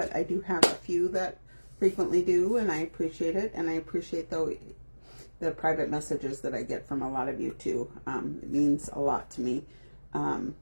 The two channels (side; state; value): both; inverted; correlation -1.00